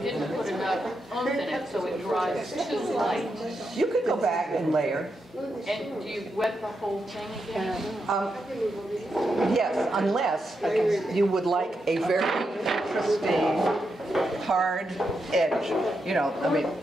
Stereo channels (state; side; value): normal; both; correlation 0.84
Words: put enough oomph in it, so it dries too light, You could go back and layer. and do you wet the whole thing again? Yes, unless you would like a very interesting hard edge. You know, I mean,